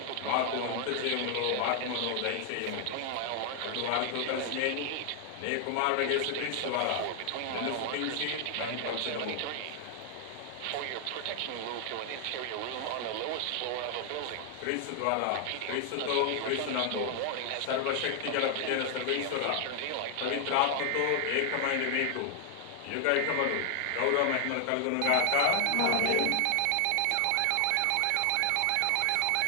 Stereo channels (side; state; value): both; different; correlation 0.00